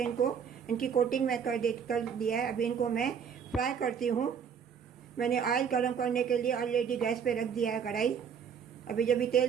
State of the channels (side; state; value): left; quieter; 7.2 dB